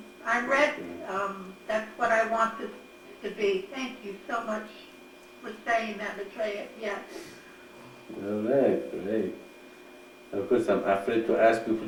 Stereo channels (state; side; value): identical; both; correlation 1.00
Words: ready. That's what I want this to be. Thank you so much for saying that, Maitreya. Yes. All right, great. Of course, I'm afraid to ask